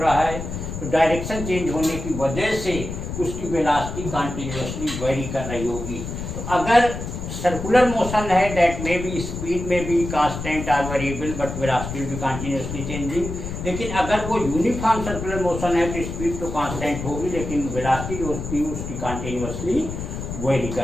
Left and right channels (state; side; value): noise; left; rumble, 7 dB below the sound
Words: है। तो डायरेक्शन चेंज होने की वजह से उसकी वेलोसिटी कंटिन्यूअसली वेरी कर रही होगी। तो अगर सर्कुलर मोशन है, दैट मे बी स्पीड में भी constant or variable but velocity will be continuously changing. लेकिन अगर वो यूनिफॉर्म सर्कुलर मोशन है तो स्पीड तो कांस्टेंट होगी लेकिन वेलोसिटी जो होती है उसकी कंटिन्यूअसली वेरी